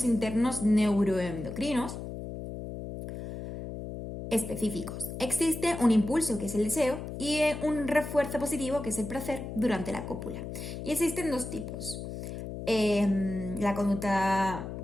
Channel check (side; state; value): left; noise; hum, 8 dB below the sound